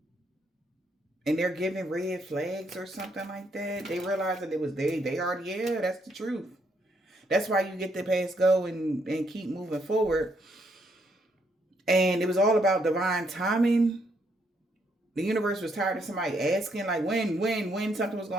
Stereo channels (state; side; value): normal; both; correlation 0.74